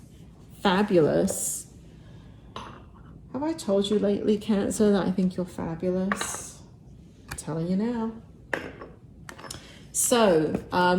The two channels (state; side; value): identical; both; correlation 1.00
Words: fabulous. Have I told you lately, Cancer, that I think you're fabulous? I'm telling you now. So,